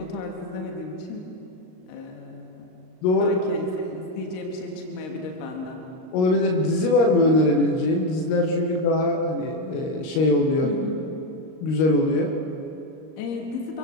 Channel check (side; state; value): right; late; 38 ms